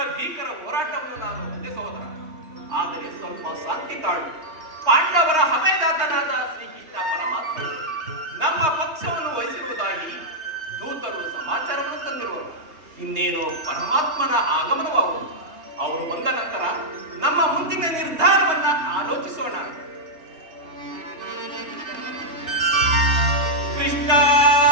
ಭೀಕರ ಹೋರಾಟವನ್ನು ನಾನು ಒಂದೇ ಸಹೋದರ. ಆದರೆ ಸ್ವಲ್ಪ ಶಾಂತಿ ತಾಳು. ಪಾಂಡವರ ಹಮೆದಾತನಾದ ಶ್ರೀಕೃಷ್ಣ ಪರಮಾತ್ಮ ನಮ್ಮ ಪಕ್ಷವನ್ನು ವಹಿಸಿರುವುದಾಗಿ ದೂತರು ಸಮಾಚಾರವನ್ನು ತಂದಿರುವರು. ಇನ್ನೇನು ಪರಮಾತ್ಮನ ಆಗಮನವಾಗುವುದು. ಅವರು ಬಂದ ನಂತರ ನಮ್ಮ ಮುಂದಿನ ನಿರ್ಧಾರ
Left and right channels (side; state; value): left; late; 3.2 ms